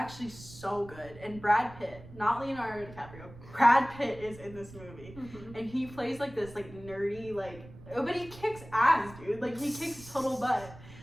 so good. And Brad Pitt, not Leonardo DiCaprio, Brad Pitt is in this movie, and he plays like this like nerdy like, but he kicks ass, dude. Like he kicks total butt.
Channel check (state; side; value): noise; right; rumble, 17 dB below the sound